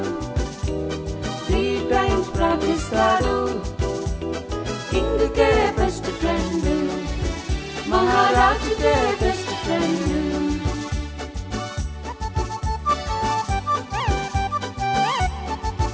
3 times ప్రార్థిస్తాడు కింగ్కే బెస్ట్ ఫ్రెండ్ మహారాజుకే బెస్ట్ ఫ్రెండ్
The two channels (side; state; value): both; identical; correlation 1.00